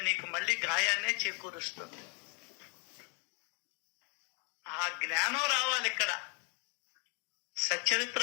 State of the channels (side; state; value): right; quieter; 36.1 dB